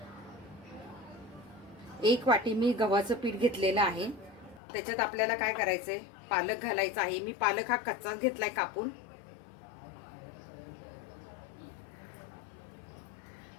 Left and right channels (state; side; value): drops out; right; at 4.6 s